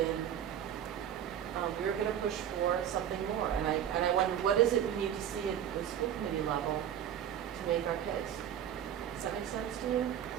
we're going to push for something more. And I wonder, what is it we need to see at the school committee level to make our case? Does that make sense to you?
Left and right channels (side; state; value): left; quieter; 9.9 dB